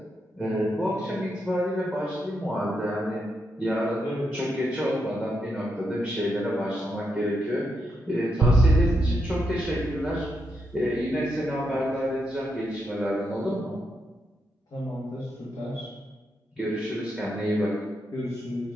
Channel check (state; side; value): normal; both; correlation 0.82